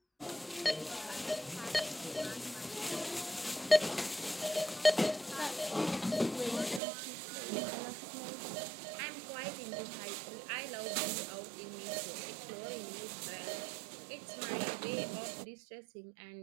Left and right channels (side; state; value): left; drops out; at 6.8 s